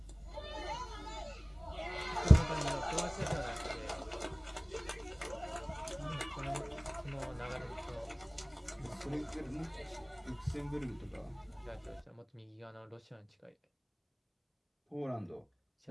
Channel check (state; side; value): identical; both; correlation 1.00